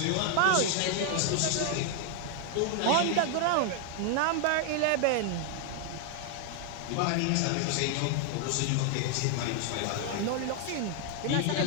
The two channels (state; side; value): different; both; correlation 0.00